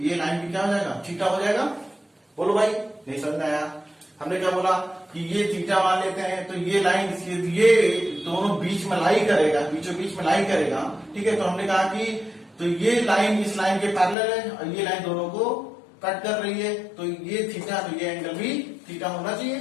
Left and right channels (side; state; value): right; drops out; at 14.2 s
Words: लाइन भी क्या हो जाएगा थीटा हो जाएगा। बोलो भाई, नहीं समझ में आया? हमने क्या बोला कि ये थीटा मान लेते हैं तो ये लाइन ये दोनों बीच में लाई करेगा, बीचों बीच में लाई करेगा, ठीक है। तो हमने कहा कि तो ये लाइन इस लाइन के पैरेलल है और ये लाइन दोनों को कट कर रही है, तो ये थीटा, तो ये एंगल भी थीटा होना